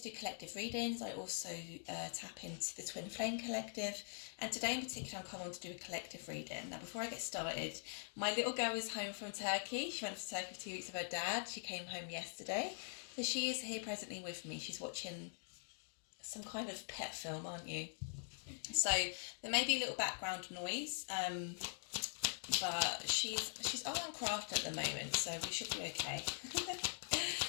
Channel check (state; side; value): silent; right; digital silence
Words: do collective readings. I also tap into the Twin Flame Collective, and today in particular I'm coming on to do a collective reading. Now, before I get started, my little girl is home from Turkey. She went to Turkey for 2 weeks with her dad. She came home yesterday, so she is here presently with me. She's watching some kind of pet film, aren't you? So there may be a little background noise, but she's art and craft at the moment, so we should be okay.